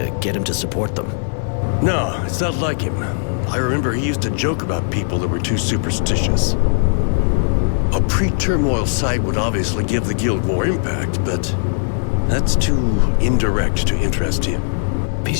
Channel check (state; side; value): silent; right; 63 dB below the other